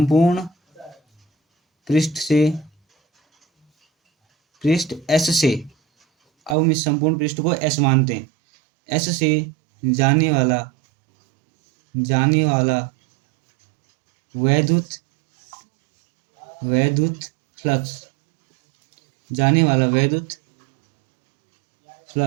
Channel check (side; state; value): left; drops out; at 6.6 s